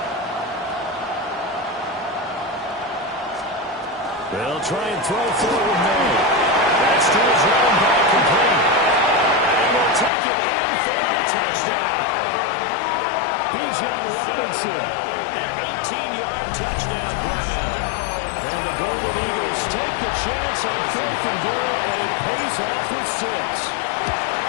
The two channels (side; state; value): right; drops out; at 10.1 s